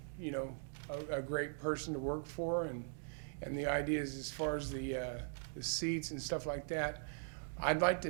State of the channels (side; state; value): left; silent; digital silence